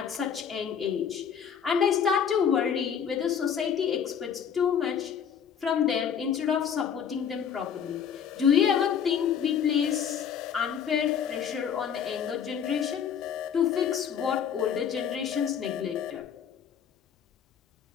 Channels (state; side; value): quieter; right; 7.9 dB